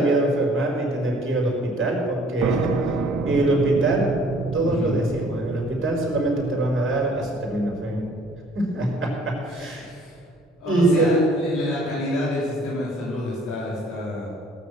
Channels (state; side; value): normal; both; correlation 0.57